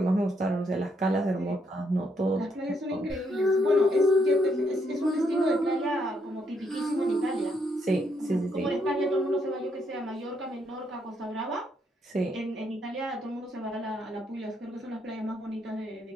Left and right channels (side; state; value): both; normal; correlation 0.75